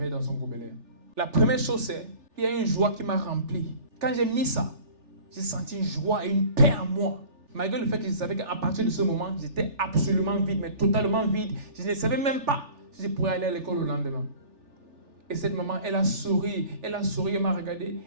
dans son gobelet. La première chose, c'est qu'il y a une joie qui m'a rempli. Quand j'ai mis ça, j'ai senti une joie et une paix en moi. Malgré le fait que je savais qu'à partir de ce moment, j'étais absolument vide, mais totalement vide. Je ne savais même pas si je pourrais aller à l'école le lendemain. Et cette maman, elle a souri, elle m'a regardé,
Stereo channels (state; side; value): late; left; 3.4 ms